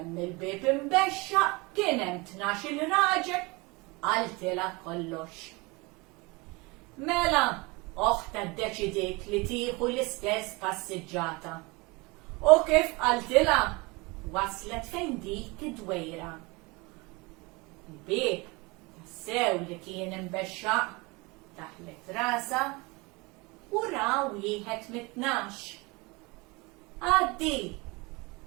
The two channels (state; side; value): quieter; left; 25.8 dB